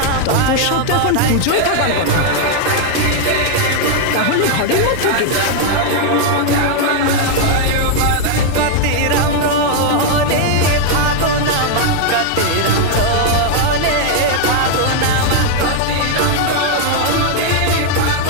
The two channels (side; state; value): both; different; correlation 0.00